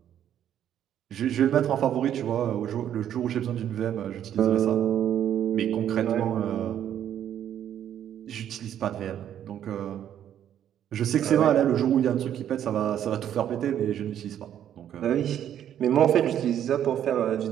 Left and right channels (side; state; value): left; quieter; 10.3 dB